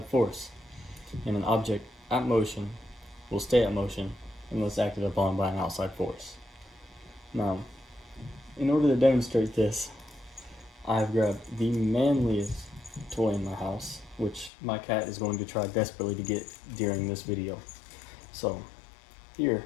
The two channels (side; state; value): right; drops out; at 14.5 s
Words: force, and an object at motion will stay at motion unless acted upon by an outside force. Now, in order to demonstrate this, I've grabbed the manliest toy in my house, which my cat is going to try desperately to get during this video. So, here,